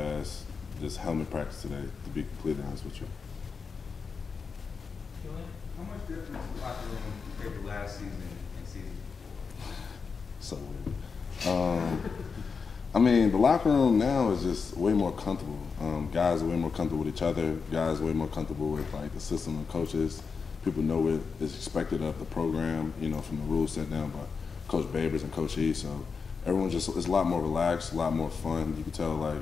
just helmet practice today, to be completely honest with you. How much difference is the locker room compared to last season and season? So weird. I mean, the locker room now is just way more comfortable. Guys are way more comfortable with each other. Guys are way more comfortable with like the system and coaches. People know what is expected of the program, you know, from the rules set down by Coach Babers and Coach E. So everyone just is a lot more relaxed, a lot more fun. You can tell like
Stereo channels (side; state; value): right; quieter; 5.3 dB